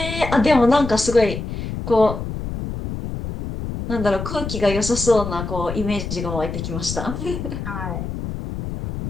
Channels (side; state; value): left; noise; rumble, 6 dB below the sound